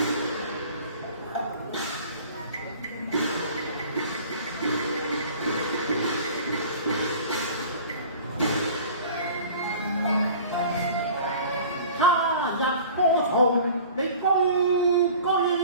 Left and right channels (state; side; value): inverted; both; correlation -0.44